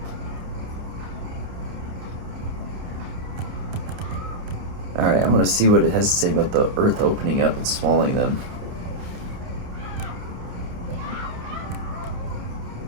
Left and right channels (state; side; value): late; left; 29 ms